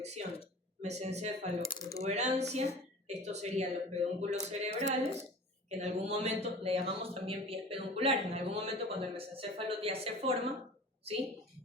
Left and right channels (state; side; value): normal; both; correlation 0.40